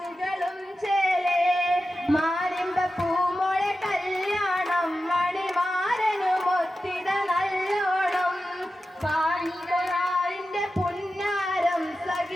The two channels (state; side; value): normal; both; correlation 0.93